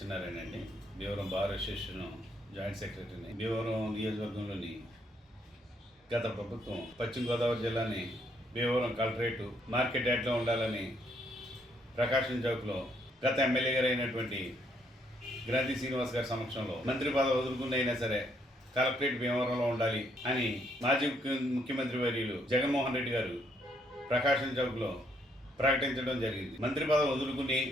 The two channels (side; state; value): both; normal; correlation 0.71